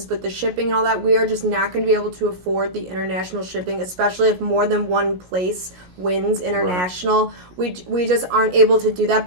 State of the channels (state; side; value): late; left; 17 ms